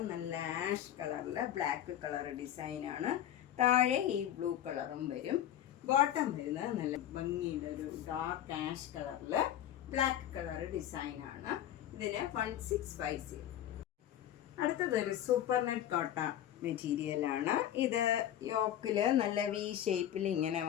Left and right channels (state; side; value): quieter; right; 11.4 dB